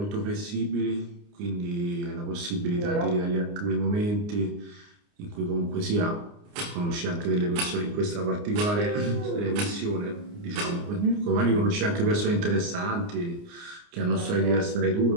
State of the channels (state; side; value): late; left; 29 ms